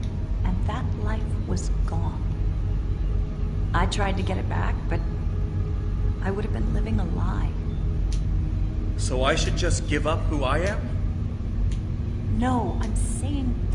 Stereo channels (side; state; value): both; identical; correlation 1.00